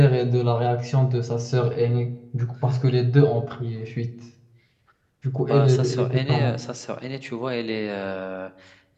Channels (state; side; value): identical; both; correlation 1.00